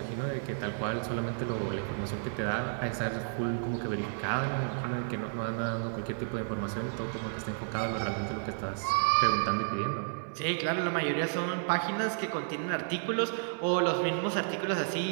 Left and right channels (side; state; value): left; silent; 57 dB below the other